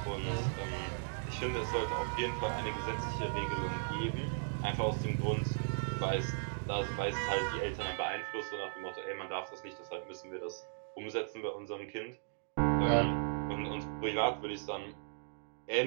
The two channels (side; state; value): left; silent; digital silence